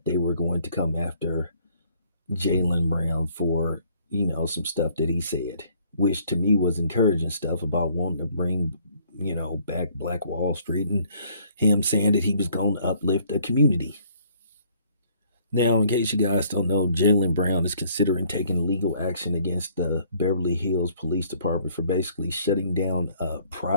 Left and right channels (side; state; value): both; inverted; correlation -0.62